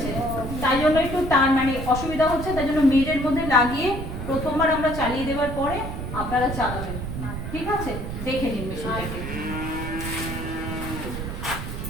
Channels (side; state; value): right; noise; rumble, 6 dB below the sound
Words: তাই জন্য একটু তার মানে অসুবিধা হচ্ছে, তাই জন্য মেজের মধ্যে লাগিয়ে প্রথমবার আমরা চালিয়ে দেওয়ার পরে আপনারা চালাবেন, ঠিক আছে? দেখে নিন মেশিনটাকে।